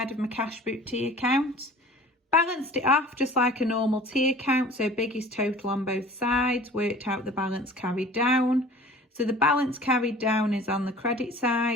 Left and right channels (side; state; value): both; normal; correlation 0.45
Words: of my cash book T account, balanced it off just like a normal T account, so biggest total on both sides, worked out the balance carried down. So the balance carried down is on the credit